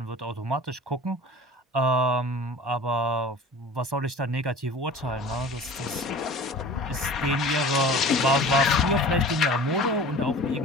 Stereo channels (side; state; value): both; normal; correlation 0.41